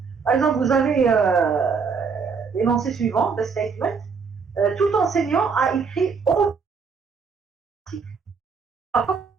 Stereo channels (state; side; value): quieter; left; 5.4 dB